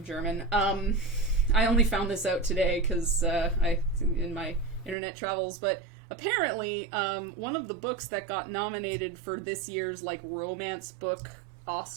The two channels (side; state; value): left; drops out; at 5.0 s